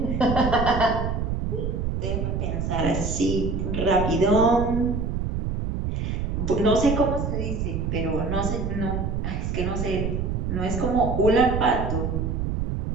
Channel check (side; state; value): right; noise; rumble, 1 dB below the sound